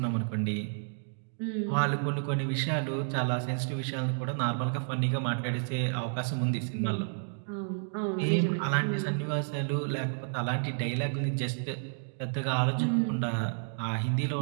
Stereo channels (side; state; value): left; silent; digital silence